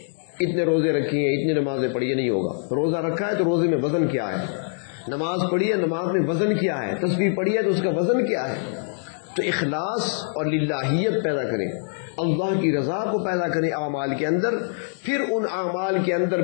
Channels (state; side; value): silent; right; digital silence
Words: اتنے روزے رکھی ہیں اتنی نمازیں پڑھی ہیں، نہیں ہوگا. روزہ رکھا ہے تو روزے میں وزن کیا ہے، نماز پڑھی ہے نماز میں وزن کیا ہے، تسبیح پڑھی ہے تو اس کا وزن کیا ہے. تو اخلاص اور للہیت پیدا کریں، اللہ کی رضا کو پیدا کریں اعمال کے اندر، پھر ان اعمال کے اندر